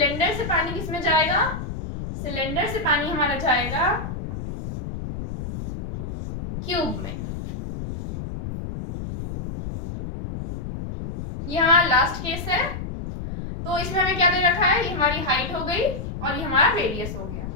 से पानी किस में जाएगा, सिलेंडर से पानी हमारा जाएगा क्यूब में। ये हमारा लास्ट केस है। तो इसमें हमें क्या दे रखा है, ये हमारी हाइट हो गई और ये हमारा रेडियस हो गया।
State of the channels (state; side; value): noise; left; rumble, 7 dB below the sound